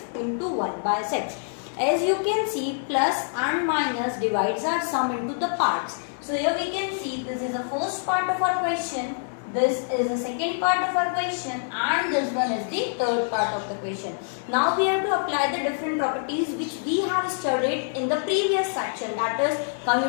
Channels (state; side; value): silent; right; digital silence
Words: into 1 by 6. As you can see, plus and minus divides our sum into the parts. So here we can see this is the first part of our question. This is the second part of our question and this one is the third part of the question. Now we have to apply the different properties which we have studied in the previous section, that is